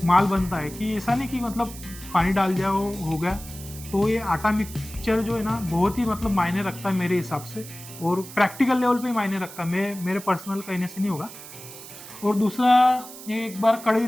माल बनता है। कि ऐसा नहीं कि मतलब पानी डाल दिया हो गया। तो ये आटा मिक्सचर जो है ना, बहुत ही मतलब मायने रखता है मेरे हिसाब से, और प्रैक्टिकल लेवल पे ही मायने रखता है, मेरे पर्सनल कहने से नहीं होगा। और दूसरा, ये एक बार कढ़ाई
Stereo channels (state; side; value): noise; right; hiss, 15 dB below the sound